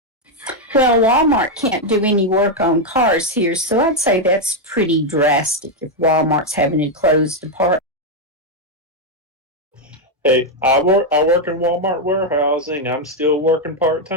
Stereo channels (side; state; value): both; normal; correlation 0.02